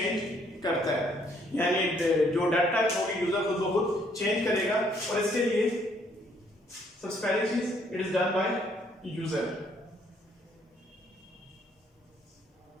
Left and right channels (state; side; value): normal; both; correlation 0.67